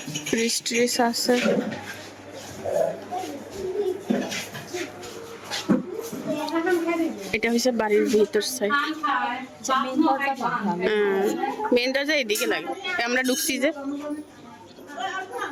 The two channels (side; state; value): both; identical; correlation 1.00